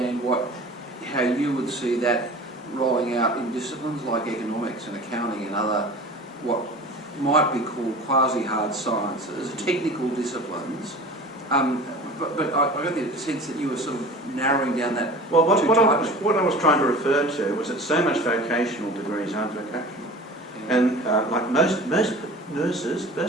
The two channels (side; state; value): both; normal; correlation 0.39